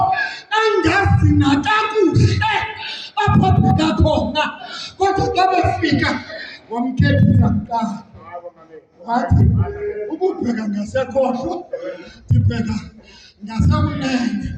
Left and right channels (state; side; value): identical; both; correlation 1.00